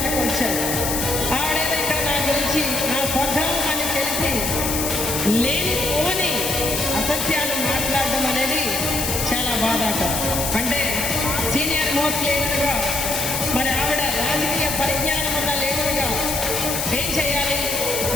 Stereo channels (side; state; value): left; noise; hiss, 1 dB below the sound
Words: వచ్చారు. ఆవిడేదో ఇక్కడ నా గురించి నా స్వగ్రామం అని తెలిసి లేనిపోని అసత్యాలు మాట్లాడడం అనేది చాలా బాధాకరం. అంటే సీనియర్ మోస్ట్ లీడర్గా మరి ఆవిడ రాజకీయ పరిజ్ఞానం ఉన్న లీడర్గా ఏం చేయాలి?